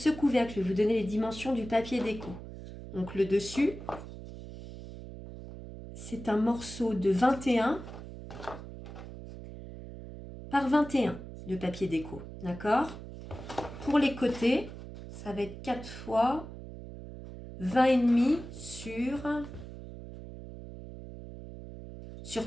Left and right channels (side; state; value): right; noise; hum, 12 dB below the sound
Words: couvercle, je vais vous donner les dimensions du papier déco. Donc, le dessus, c'est un morceau de 21 par 21 de papier déco. D'accord? Pour les côtés, ça va être 4 fois 20,5 sur